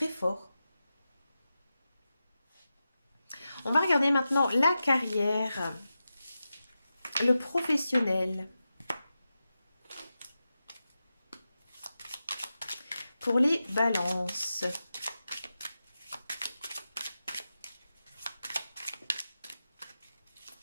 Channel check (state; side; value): inverted; both; correlation -0.92